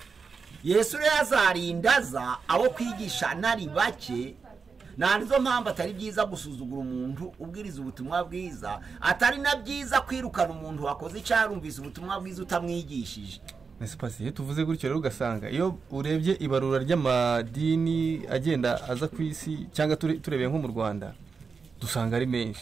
Yesu rero azarindaza abo kwigisha nari bake nizo mpamvu atari byiza gusuzugura umuntu ubwiriza ubutumwa bwiza, atari na byiza kwirukana umuntu wakoze icyarumvise ubutumwa bwiza utamwigishije. Nese pasi tuvuze gutyo rero ugasanga iyo urebye ibarura ry'amadini agenda aza ku isi cyangwa turebeye nko mu Rwanda dusanga ari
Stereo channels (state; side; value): quieter; left; 5.2 dB